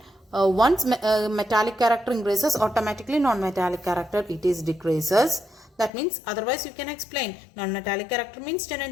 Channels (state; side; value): drops out; right; at 5.9 s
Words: once metallic character increases, automatically non-metallic character it is decreases. That means otherwise you can explain non-metallic character means